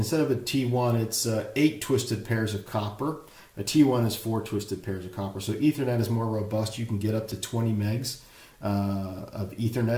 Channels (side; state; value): both; identical; correlation 1.00